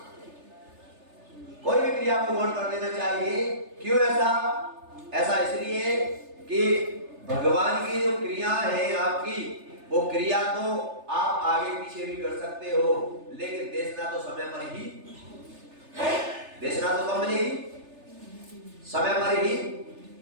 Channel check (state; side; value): late; left; 3.3 ms